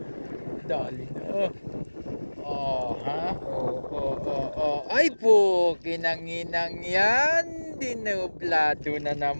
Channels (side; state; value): both; inverted; correlation -1.00